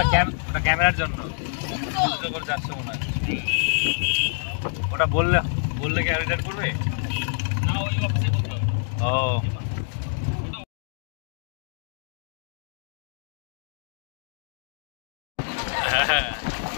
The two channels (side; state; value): right; silent; digital silence